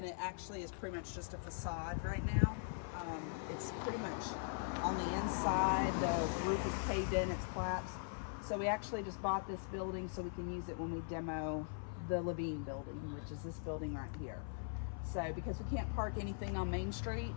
it actually is pretty much just a facade right now. It's pretty much on the inside, the roof is caved in, it's collapsed. So we actually just bought this building so we can use it when we demo the Levine building, which is this building right here. So because we can't park anything on Main Street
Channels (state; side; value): silent; right; 50 dB below the other